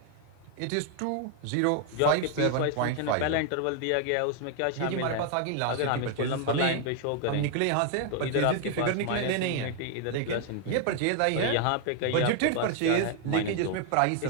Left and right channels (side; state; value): both; different; correlation 0.00